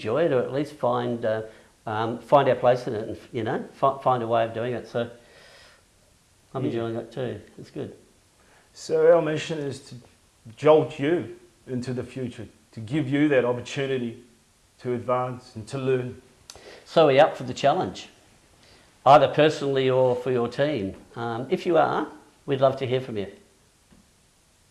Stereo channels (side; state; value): both; identical; correlation 1.00